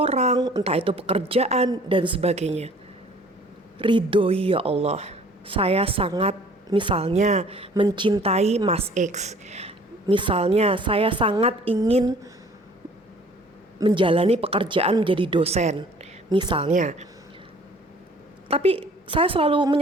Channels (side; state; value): both; normal; correlation 0.53